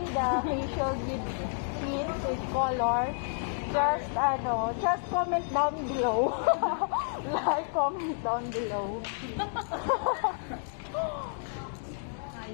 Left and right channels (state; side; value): silent; right; digital silence